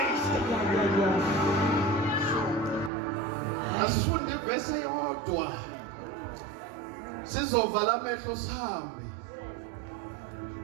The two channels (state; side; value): drops out; left; at 2.9 s